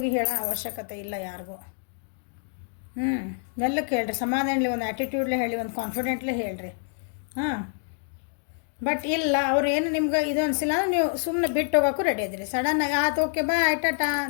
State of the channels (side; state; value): right; silent; digital silence